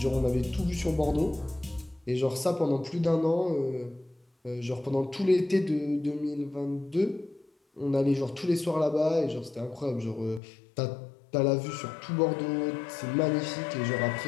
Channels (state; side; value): drops out; right; at 10.4 s